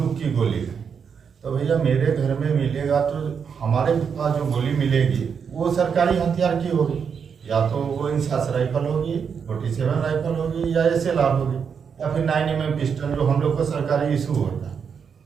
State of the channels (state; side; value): quieter; left; 6.7 dB